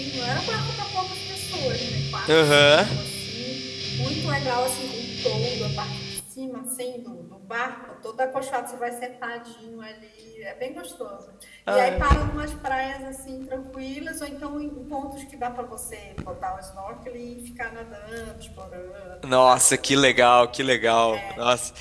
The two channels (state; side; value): identical; both; correlation 1.00